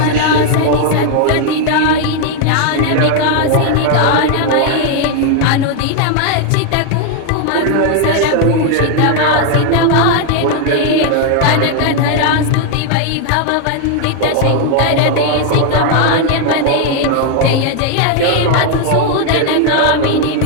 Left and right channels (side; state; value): both; different; correlation 0.00